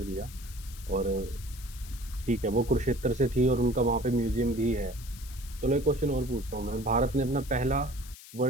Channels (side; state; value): left; noise; hiss, 17 dB below the sound